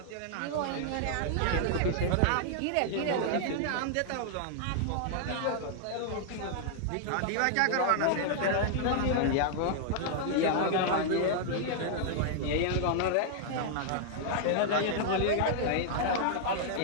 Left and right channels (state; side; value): different; both; correlation -0.01